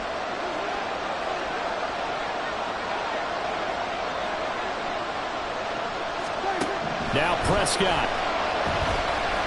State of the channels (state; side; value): identical; both; correlation 1.00